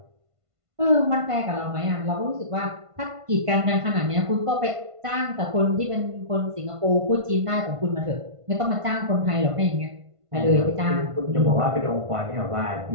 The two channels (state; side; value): late; left; 1.5 ms